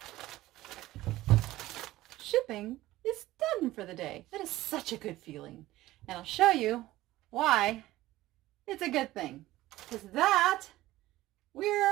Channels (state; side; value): quieter; left; 16.5 dB